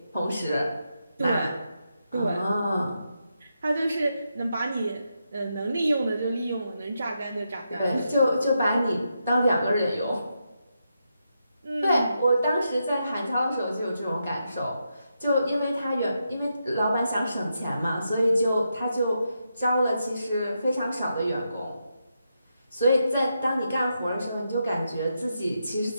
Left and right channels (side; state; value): both; inverted; correlation -0.84